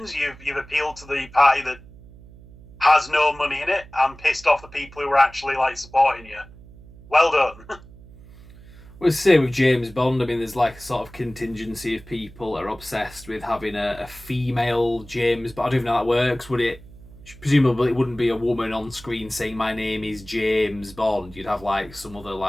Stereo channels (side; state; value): right; noise; hum, 20 dB below the sound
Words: you've appealed to the party that has no money in it and pissed off the people who are actually like supporting you. Well done. Well, say with James Bond, I mean, there's like a sort of contingency of people that are obsessed with having a female James, but I don't even know how that works. Would it? Presumably it wouldn't be a woman on screen saying my name is James Bond. You'd have like some other